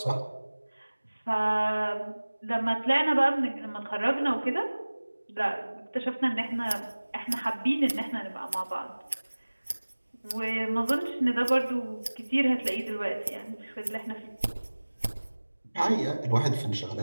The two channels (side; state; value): both; inverted; correlation -1.00